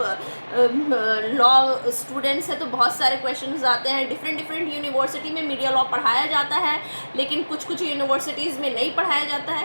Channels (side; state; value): both; inverted; correlation -1.00